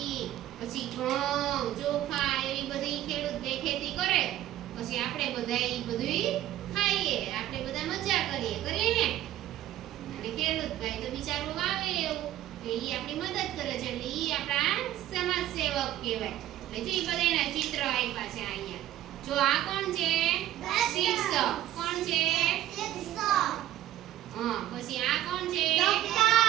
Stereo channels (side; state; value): left; quieter; 13.2 dB